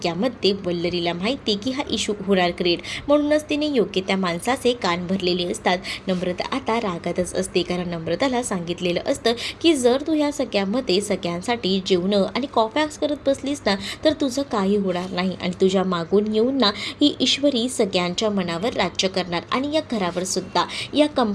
वल्लरीला माहिती की हा इश्यू होणार क्रिएट, म्हणूनच तिने योग्य त्या माणसाचे कान भरलेले असतात. नम्रता आता रागातच असते, कारण नम्रताला सांगितलेलं असतं की जर तू ह्या सगळ्यामध्ये सगळ्यांसाठी जेवणं आणि कॉफॅक्स करत बसलीस ना तर तुझं काही होणार नाही आणि तुझ्या मागून येऊन ना ही ईश्वरी सगळ्यांच्या मनावर राज्य करणार आणि या घरावर सुद्धा, या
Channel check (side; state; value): both; identical; correlation 1.00